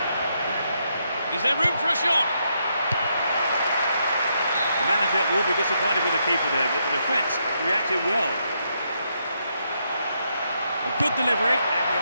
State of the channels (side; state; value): both; inverted; correlation -0.78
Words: Is there room for a shot? The manager will be disappointed with the keeper there, but the defence reacted well. A good delivery, and we